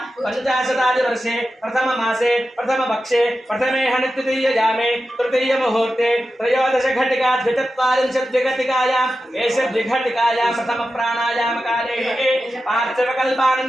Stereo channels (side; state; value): both; normal; correlation 0.92